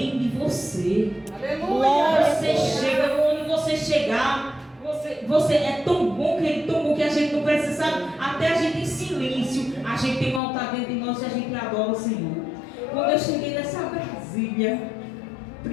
você. Glória. Você chega, onde você chegar, você é tão bom que a gente não precisa, sabe? Até a gente em silêncio, a gente tem um altar dentro de nós e a gente adora o Senhor. Quando eu cheguei nessa Brasília,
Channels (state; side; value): drops out; right; at 10.4 s